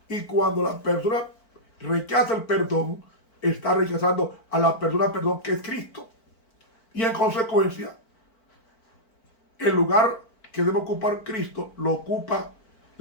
Y cuando la persona rechaza el perdón, está rechazando a la persona, que es Cristo. Y en consecuencia, el lugar que debe ocupar Cristo lo ocupa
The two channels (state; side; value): late; right; 4.5 ms